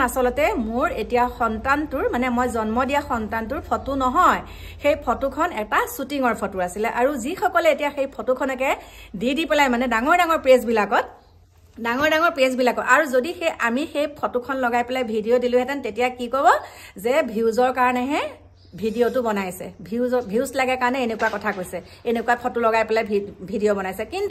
আসলতে মোৰ এতিয়া সন্তানটোৰ মানে মই জন্ম দিয়া সন্তানটোৰ ফটো নহয় সেই ফটোখন এটা শুটিংৰ ফটো আছিল আৰু যি সকলে এতিয়া সেই ফটোখনকে দি পেলাই মানে ডাঙৰ পেজ বিলাকত আৰু যদি আমি সেই ফটোখন লগাই পেলাই ভিডিও দিলোহেতেন তেতিয়া কি ক'ব যে ভিউজৰ কাৰণেহে ভিডিওটো বনাইছে ভিউজ লাগে কাৰণে এনেকুৱা কথা কৈছে এনেকুৱা ফটো লগাই পেলাই ভিডিও বনাইছে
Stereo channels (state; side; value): identical; both; correlation 1.00